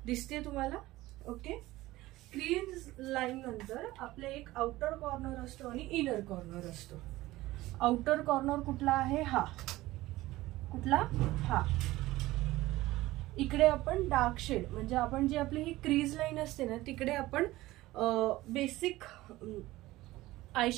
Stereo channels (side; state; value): left; quieter; 17.7 dB